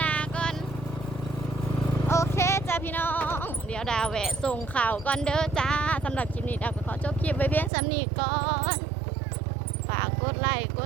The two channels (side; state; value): left; drops out; at 7.7 s